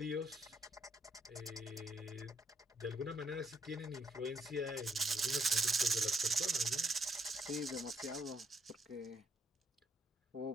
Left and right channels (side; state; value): both; normal; correlation 0.73